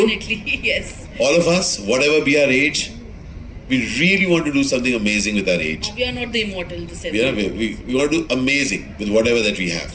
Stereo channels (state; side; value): identical; both; correlation 1.00